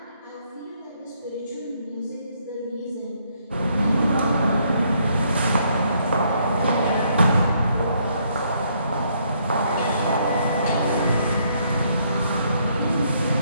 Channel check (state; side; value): inverted; both; correlation -0.71